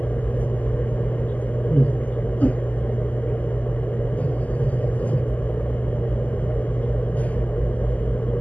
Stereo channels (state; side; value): late; right; 0.076 ms